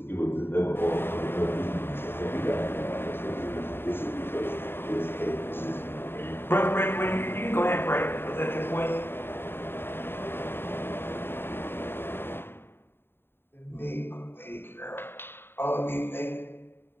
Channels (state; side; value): late; right; 0.11 ms